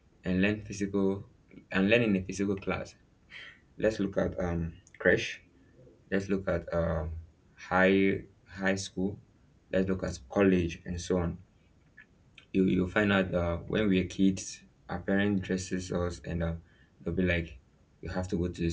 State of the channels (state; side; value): identical; both; correlation 1.00